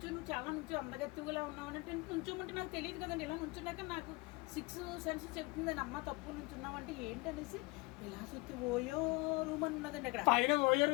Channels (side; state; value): right; quieter; 24.8 dB